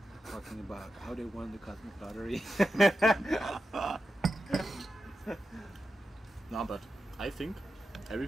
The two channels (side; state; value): both; normal; correlation 0.90